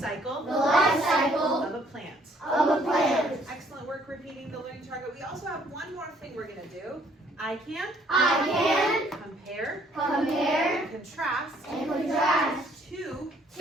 The life cycle. Of a plant. Of a plant. Excellent work repeating the learning target. We also have one more thing we're going to do. I can. I can. Compare. Compare. And contrast. And contrast. Two.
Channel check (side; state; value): both; normal; correlation 0.64